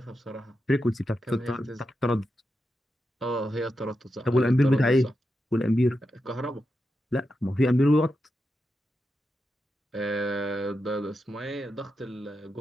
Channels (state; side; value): normal; both; correlation 0.87